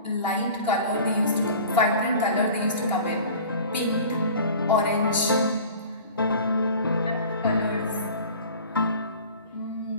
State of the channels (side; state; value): both; inverted; correlation -0.42